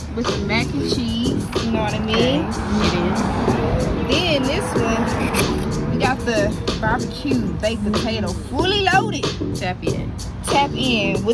with the mac and cheese, you know what I mean? Then this one, we got the barbecue baked potato, fully loaded. Tap in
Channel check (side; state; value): both; identical; correlation 1.00